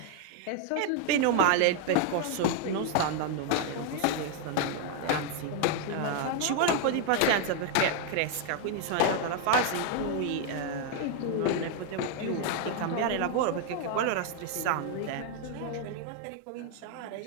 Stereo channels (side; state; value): both; different; correlation 0.00